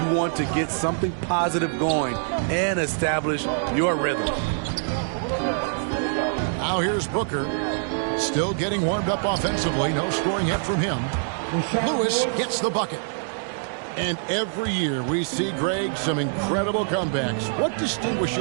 want to get something positive going and establish your rhythm. Now here's Booker. Still getting warmed up offensively. No scoring yet from him. Lewis gets the bucket. And every year we see, Greg, some incredible comebacks. What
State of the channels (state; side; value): silent; left; digital silence